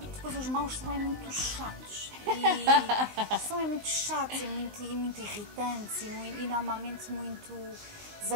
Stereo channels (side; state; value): left; late; 19 ms